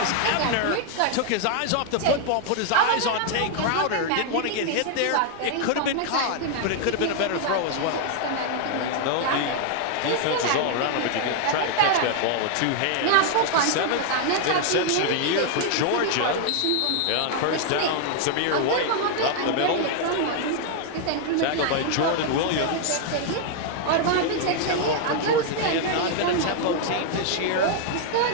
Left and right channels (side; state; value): both; different; correlation 0.00